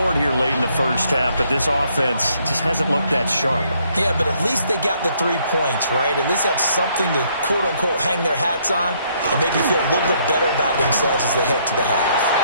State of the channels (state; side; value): inverted; both; correlation -0.69